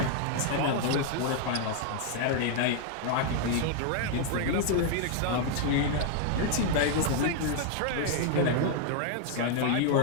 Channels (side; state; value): both; different; correlation 0.00